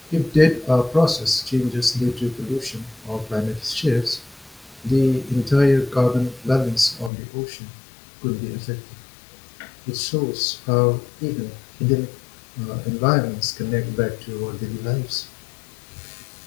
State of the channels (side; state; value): right; drops out; at 7.1 s